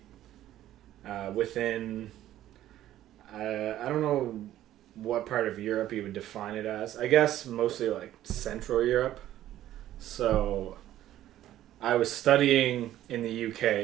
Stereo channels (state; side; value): quieter; left; 13.1 dB